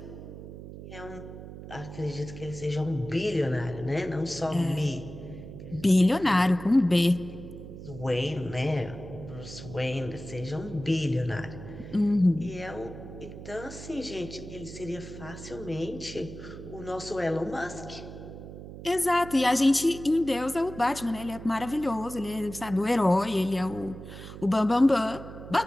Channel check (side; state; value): right; noise; hum, 12 dB below the sound